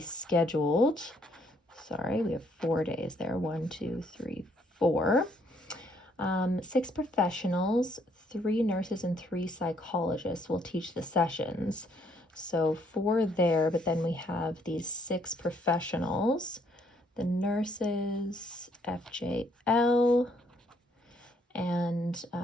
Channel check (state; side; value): normal; both; correlation 0.68